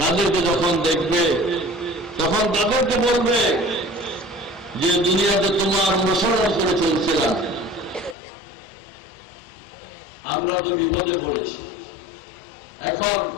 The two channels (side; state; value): right; drops out; at 8.2 s